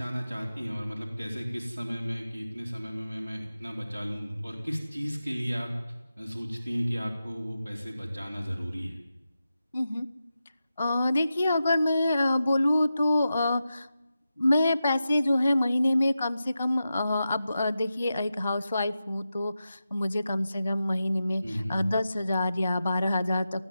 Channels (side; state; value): both; inverted; correlation -0.91